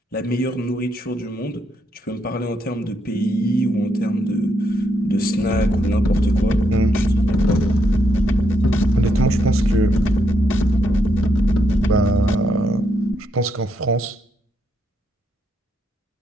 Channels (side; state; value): both; normal; correlation 0.78